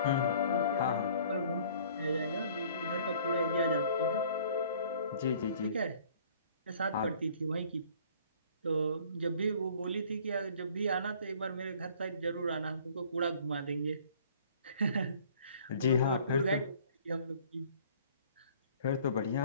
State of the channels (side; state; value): both; inverted; correlation -0.54